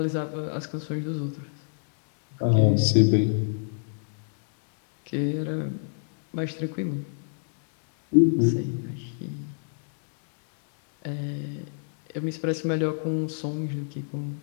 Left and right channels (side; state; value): right; silent; digital silence